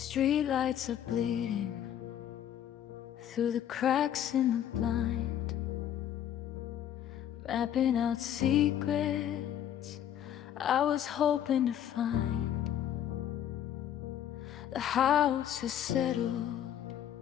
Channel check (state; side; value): quieter; right; 10.4 dB